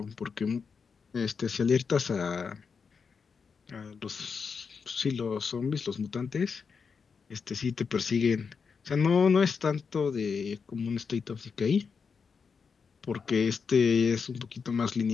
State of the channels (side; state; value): right; quieter; 5.7 dB